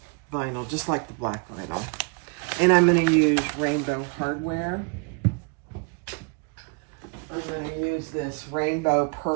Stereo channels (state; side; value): quieter; left; 34.9 dB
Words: vinyl, just like the black vinyl. And I'm going to use Rainbow Hardware. I'm going to use this rainbow